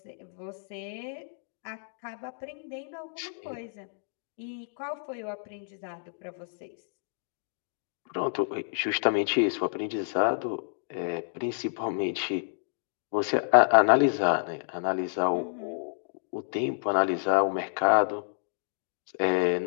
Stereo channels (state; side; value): silent; right; digital silence